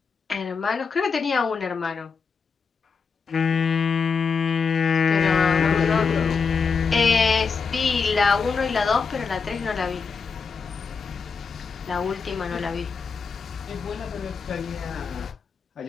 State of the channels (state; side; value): quieter; right; 5.4 dB